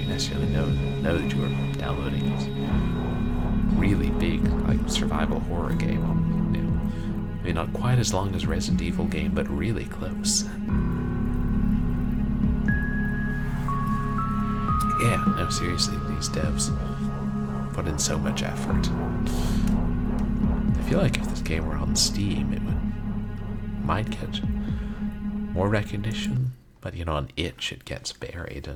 necessarily know that you were downloading it. Really big, like, survival horror game. You know, maybe not quite as long as Resident Evil game, but really close. Yeah, no, seriously, these devs put in so much effort. I feel like if this game were on Steam, it might get more recognition, but you know, on itch it gets buried,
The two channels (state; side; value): identical; both; correlation 1.00